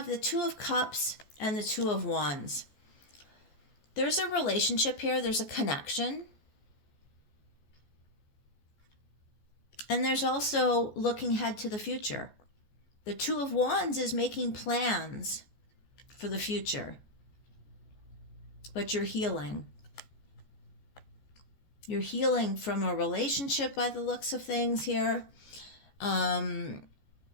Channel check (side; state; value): right; late; 14 ms